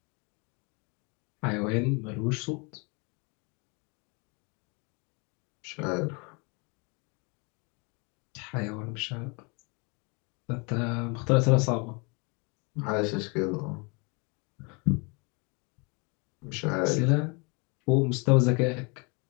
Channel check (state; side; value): quieter; right; 31.4 dB